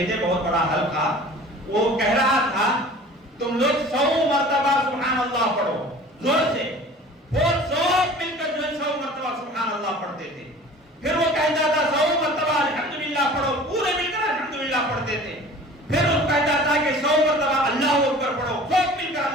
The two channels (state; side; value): normal; both; correlation 0.44